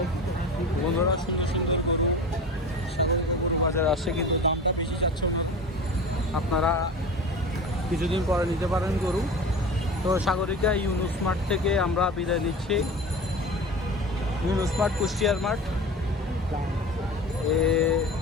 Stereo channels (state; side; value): normal; both; correlation 0.34